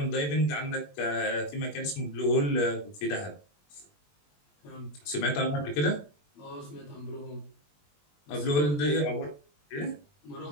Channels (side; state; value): right; late; 20 ms